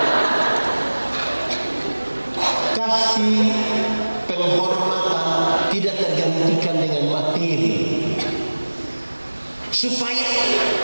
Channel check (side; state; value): both; inverted; correlation -1.00